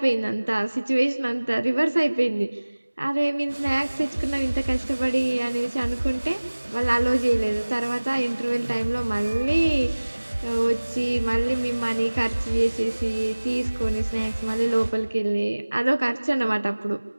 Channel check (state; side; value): inverted; both; correlation -1.00